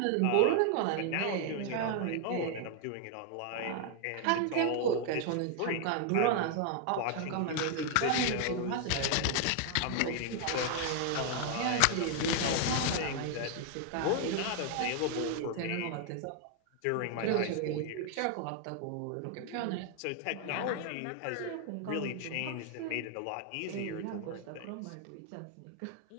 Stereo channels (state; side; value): different; both; correlation 0.00